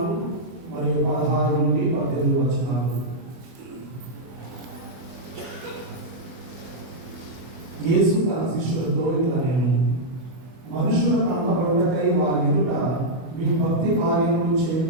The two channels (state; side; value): late; left; 24 ms